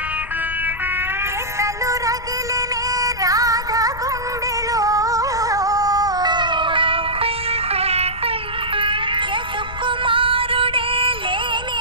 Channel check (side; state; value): left; noise; rumble, 12 dB below the sound